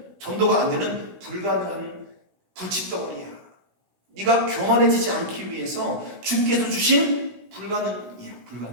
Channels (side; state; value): left; late; 16 ms